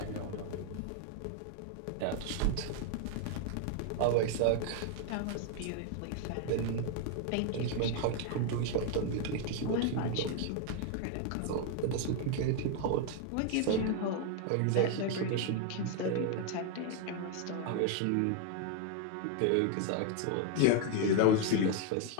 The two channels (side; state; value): both; different; correlation 0.01